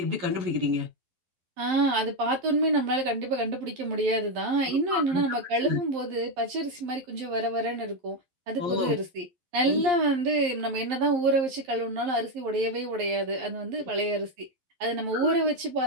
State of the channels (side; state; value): left; late; 11 ms